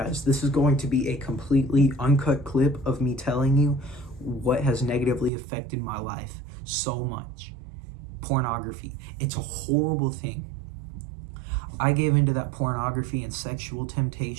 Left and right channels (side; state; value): left; drops out; at 5.3 s